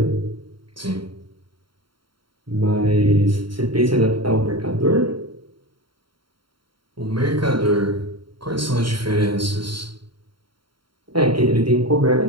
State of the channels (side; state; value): left; late; 0.73 ms